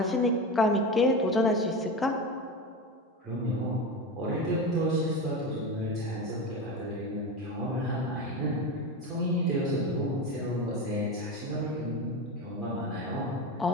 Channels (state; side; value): normal; both; correlation 0.22